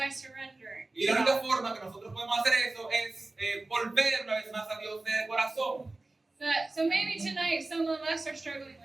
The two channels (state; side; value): quieter; left; 3.1 dB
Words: surrendering. Y la única forma que nosotros podemos hacer eso es volver una vez más a Dios de corazón. So maybe tonight some of us are struggling